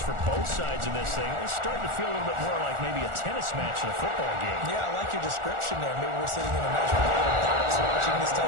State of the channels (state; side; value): late; left; 1.4 ms